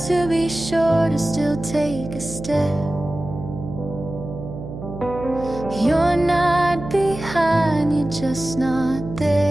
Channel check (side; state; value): right; noise; hum, 10 dB below the sound